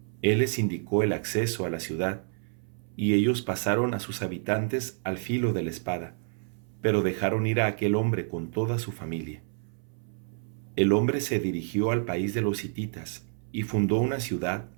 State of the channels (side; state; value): left; silent; 59 dB below the other